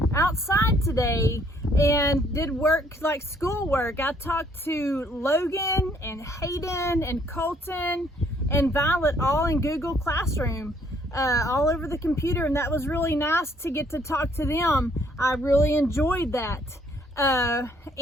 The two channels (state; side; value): normal; both; correlation 0.65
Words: outside today and did work like schoolwork. I talked to Logan and Hayden and Colton and Violet all in Google Classroom, all over the computer, and that was really nice to get to talk to them. I really enjoyed that.